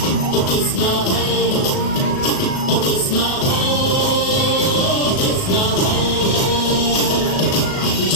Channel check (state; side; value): late; right; 37 ms